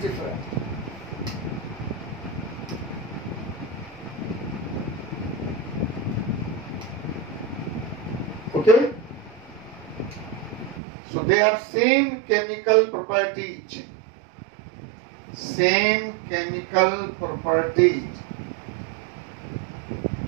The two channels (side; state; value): left; drops out; at 10.8 s